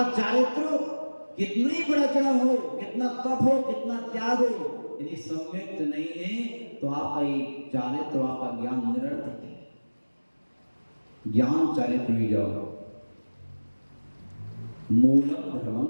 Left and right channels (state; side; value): inverted; both; correlation -1.00